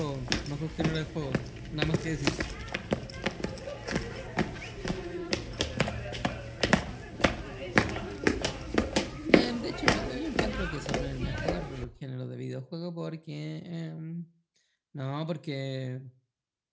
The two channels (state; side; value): identical; both; correlation 1.00